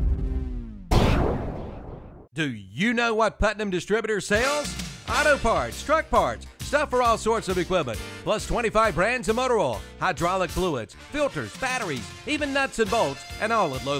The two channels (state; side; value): identical; both; correlation 1.00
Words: Do you know what Putnam Distributor sells? Auto parts, truck parts, stuff for all sorts of equipment, plus 25 brands of motor oil, hydraulic fluids, filters, batteries, even nuts and bolts, and all at low,